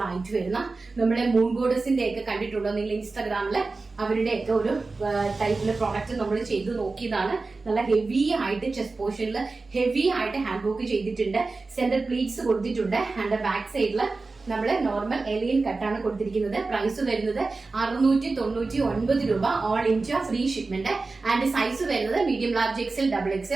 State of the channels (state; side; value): quieter; left; 3.8 dB